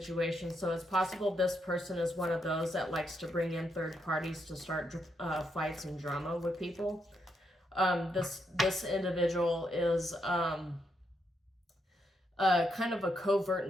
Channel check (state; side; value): normal; both; correlation 0.79